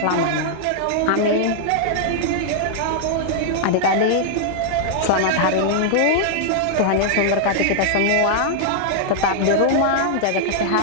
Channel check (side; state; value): both; different; correlation -0.01